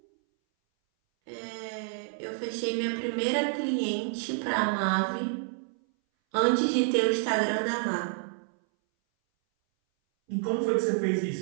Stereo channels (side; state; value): left; silent; 59 dB below the other